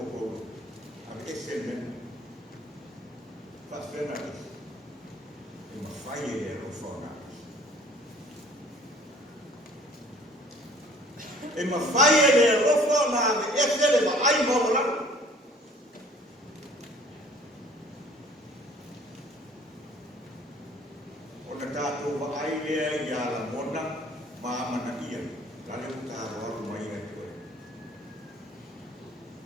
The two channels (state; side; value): normal; both; correlation 0.52